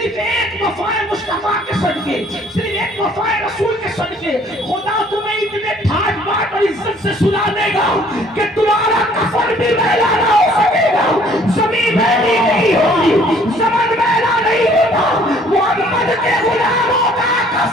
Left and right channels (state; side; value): normal; both; correlation 0.58